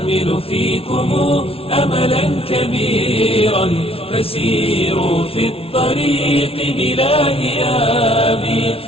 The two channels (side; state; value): right; late; 0.27 ms